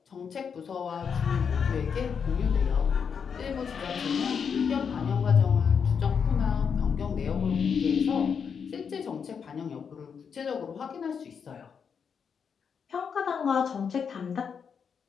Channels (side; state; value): right; quieter; 6.6 dB